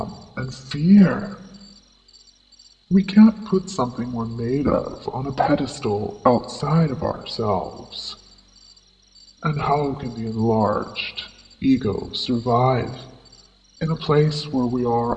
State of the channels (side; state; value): both; identical; correlation 1.00